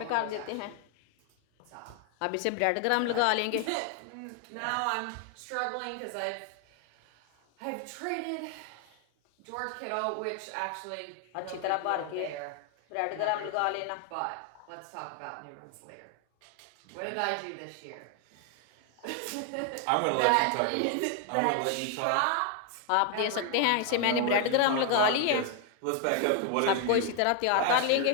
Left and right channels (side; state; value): both; different; correlation 0.00